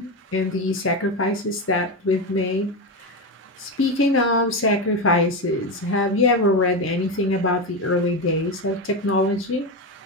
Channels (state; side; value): normal; both; correlation 0.15